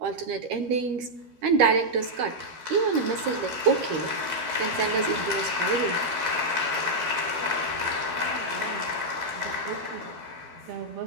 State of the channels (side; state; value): left; late; 12 ms